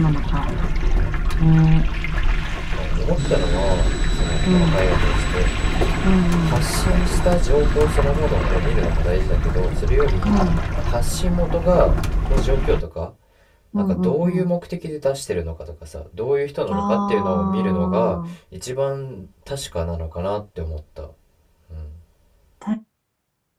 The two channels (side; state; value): both; identical; correlation 1.00